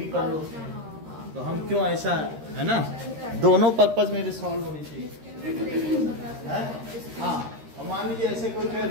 कर लो, तो हम क्यों ऐसा है ना, दोनों पर्पज मेरे सॉल्व होने चाहिए। हाँ, और मान लीजिए ऐसे कोई कहे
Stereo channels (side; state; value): left; late; 13 ms